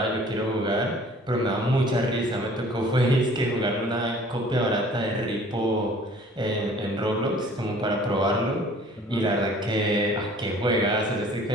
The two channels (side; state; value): both; normal; correlation 0.51